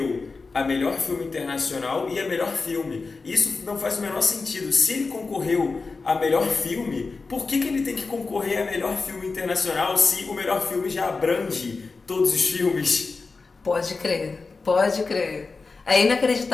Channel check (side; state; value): right; quieter; 4.2 dB